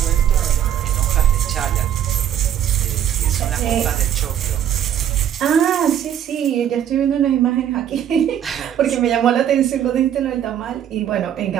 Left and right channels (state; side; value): quieter; left; 10.0 dB